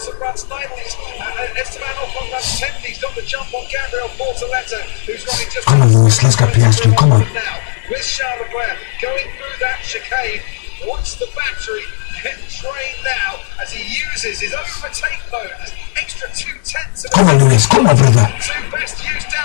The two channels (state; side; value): silent; right; digital silence